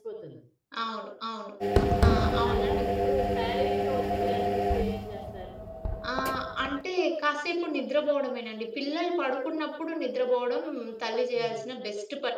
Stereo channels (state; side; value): identical; both; correlation 1.00